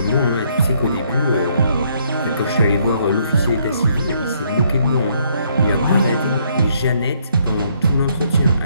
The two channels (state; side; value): inverted; both; correlation -0.69